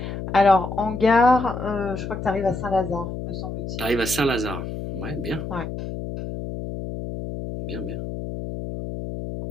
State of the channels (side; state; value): left; noise; hum, 6 dB below the sound